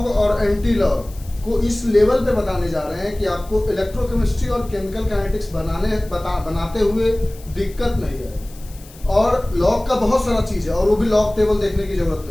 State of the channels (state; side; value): noise; left; hiss, 22 dB below the sound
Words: और एंटी लॉग को इस लेवल पे बताने जा रहे हैं कि आपको इलेक्ट्रोकेमिस्ट्री और केमिकल काइनेटिक्स बनाते हुए दिक्कत नहीं है। और लॉग का बहुत सारा चीज़ है, और वो भी लॉग टेबल देखने की जरूरत